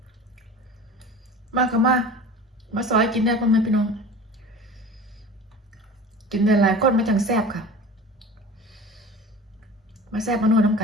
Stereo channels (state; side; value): normal; both; correlation 0.38